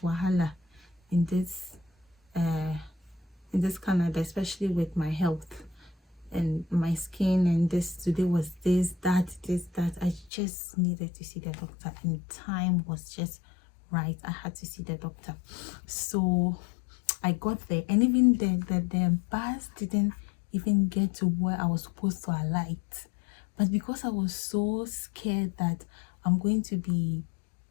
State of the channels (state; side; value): drops out; right; at 10.3 s